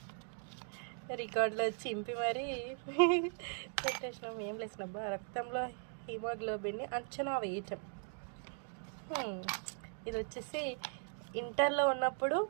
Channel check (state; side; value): silent; left; 52 dB below the other